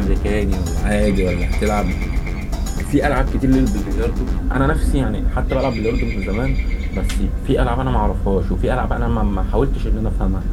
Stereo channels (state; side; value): identical; both; correlation 1.00